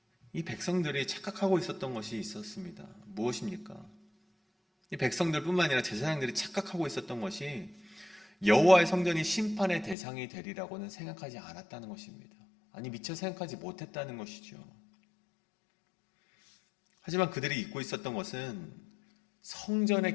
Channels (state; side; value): drops out; right; at 10.0 s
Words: 이 백성들이 착각하고 있었던 것이 있었습니다. 무엇입니까? 이 백성들뿐만 아니라 제사장들이 착각하고 있었던 것이 여호와의 성전이 심판의 대상이 되리라고는 생각하지 않았다는 것입니다. 아니, 미처 생각하지 못했다는 것이죠. 하지만 그들이 잊고 있었던 것은